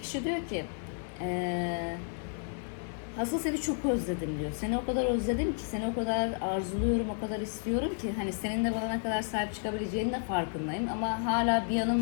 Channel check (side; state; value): right; silent; 57 dB below the other